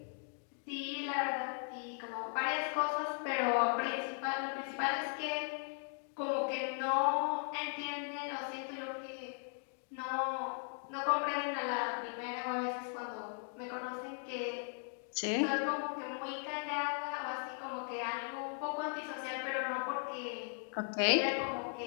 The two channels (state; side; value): silent; right; 52 dB below the other